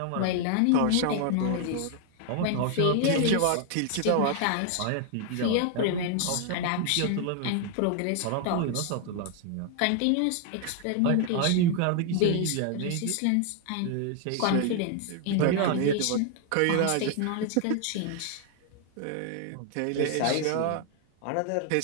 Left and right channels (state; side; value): different; both; correlation 0.00